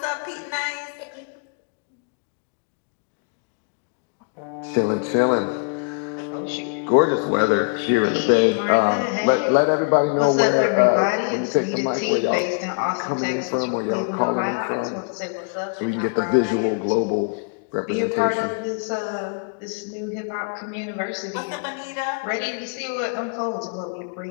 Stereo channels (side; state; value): right; quieter; 37.8 dB